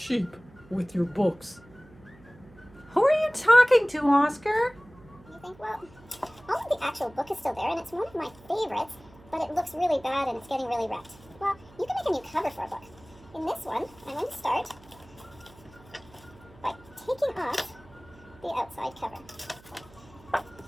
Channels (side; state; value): right; noise; hum, 24 dB below the sound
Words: with your books. Who are you talking to, Oscar? You think, well, all of the actual book is still there, and it's one of my favorites, but it looks really bad and it's getting really wrecked. Well, you can make a new cover for a book. In this one, I'm going to start by taking off the outside cover.